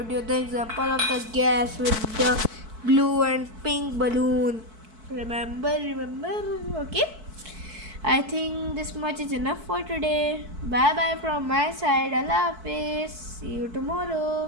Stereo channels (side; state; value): left; late; 4.6 ms